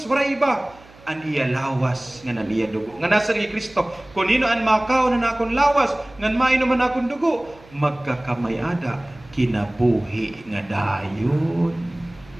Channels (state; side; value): noise; right; hum, 24 dB below the sound